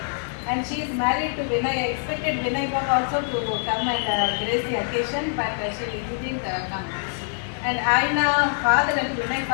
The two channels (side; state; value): right; silent; digital silence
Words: And she is married to Vinay. I expected Vinay also to come and grace the occasion, but she didn't come. And ఆయన father అంటే Vinay